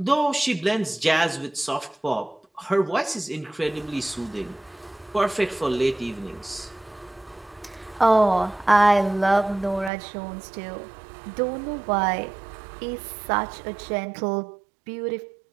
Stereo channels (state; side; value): drops out; left; at 9.9 s